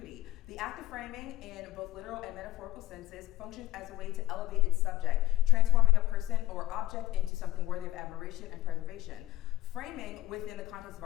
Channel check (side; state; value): right; quieter; 14.8 dB